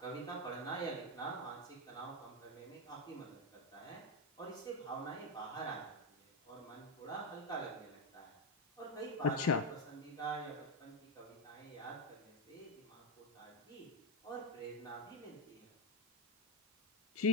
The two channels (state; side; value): normal; both; correlation 0.07